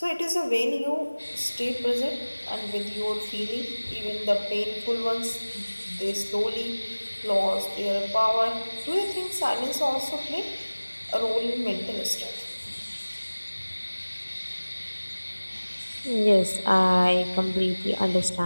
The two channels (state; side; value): inverted; both; correlation -1.00